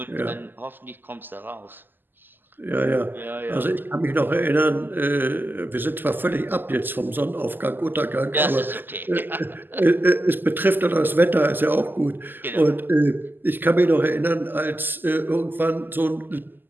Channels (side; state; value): left; late; 0.091 ms